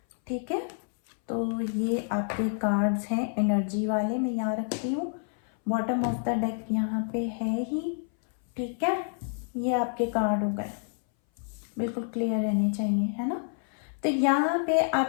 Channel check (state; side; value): silent; right; 59 dB below the other